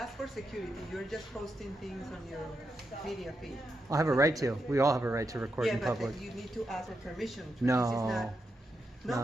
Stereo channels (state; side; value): normal; both; correlation 0.85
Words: for security. You're just posting things on your media feed. I'll have a right to. We all have a right to record in but public. you need to ask for permission. No. This is not,